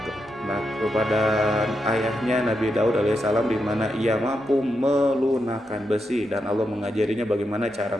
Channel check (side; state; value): both; normal; correlation 0.84